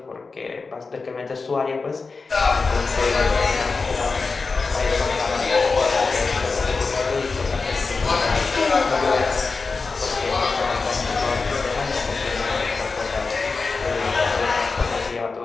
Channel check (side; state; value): right; quieter; 4.3 dB